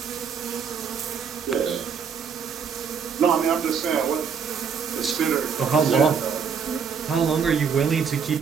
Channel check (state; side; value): quieter; left; 6.4 dB